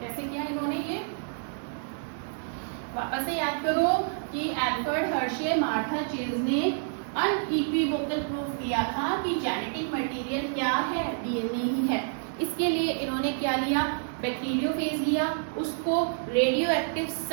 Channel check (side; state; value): left; silent; digital silence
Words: किया इन्होंने ये। वापस से याद करो कि एल्फ्रेड हर्शे मार्था चेज ने अनइक्विवोकल प्रूफ दिया था कि जेनेटिक मटेरियल क्या है, डीएनए ही है। इसके लिए इन्होंने क्या लिया, बैक्टीरियोफेज लिया, उसको रेडियो एक्टिव